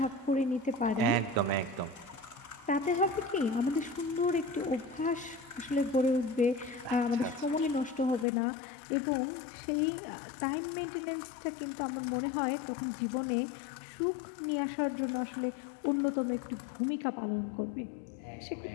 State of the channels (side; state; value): right; drops out; at 8.2 s